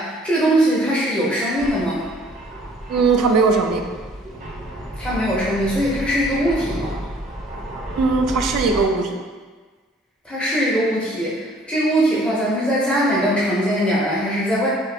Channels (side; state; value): both; normal; correlation 0.56